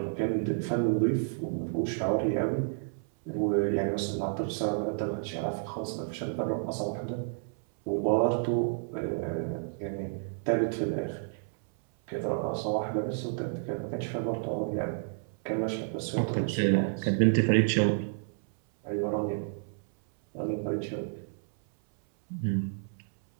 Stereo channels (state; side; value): silent; left; 58 dB below the other